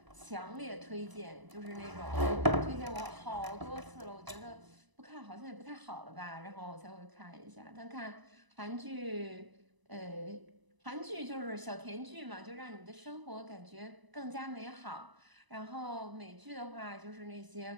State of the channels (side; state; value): left; late; 1.0 ms